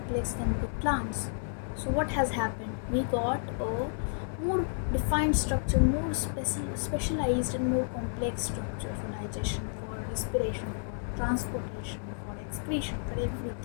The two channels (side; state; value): right; silent; 57 dB below the other